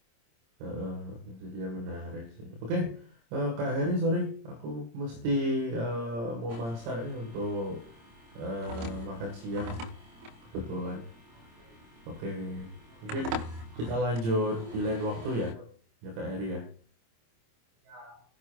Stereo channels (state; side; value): late; left; 26 ms